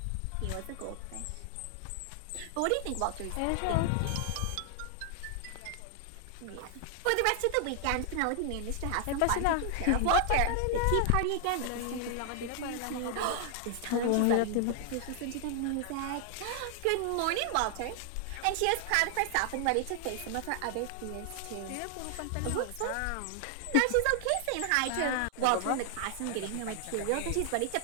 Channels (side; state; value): both; different; correlation 0.00